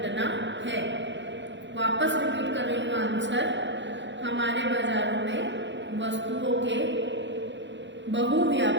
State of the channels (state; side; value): late; left; 0.53 ms